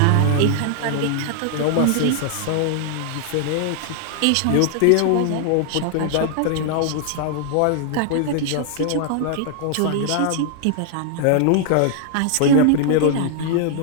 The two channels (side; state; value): both; different; correlation 0.00